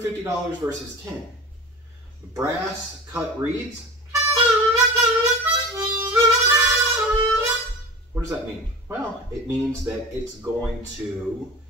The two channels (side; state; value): both; normal; correlation 0.33